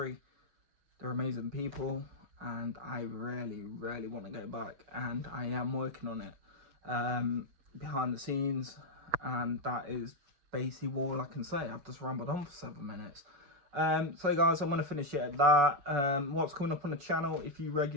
They're amazing people. And I really, really want to go back. And I am working on it behind the scenes. And that is basically all I can say. I've just rambled on for 7 minutes. So guys, I'm going to finish it at that. What's coming up on the channel, if you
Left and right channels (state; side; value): late; left; 6.9 ms